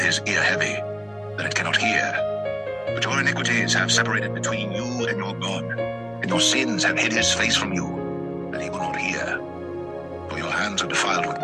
ear heavy, that it cannot hear. But your iniquities have separated between you and your God, and your sins have hid his face from you, that he will not hear. For your hands are defiled with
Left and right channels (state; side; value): identical; both; correlation 1.00